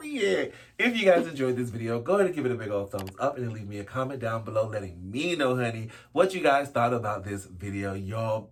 If you guys enjoyed this video, go ahead and give it a big old thumbs up and then leave me a comment down below letting me know, honey, what you guys thought about this video, y'all.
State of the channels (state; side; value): identical; both; correlation 1.00